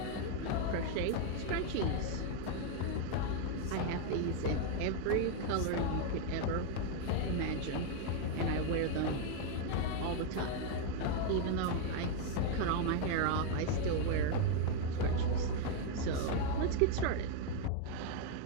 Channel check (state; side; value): different; both; correlation 0.01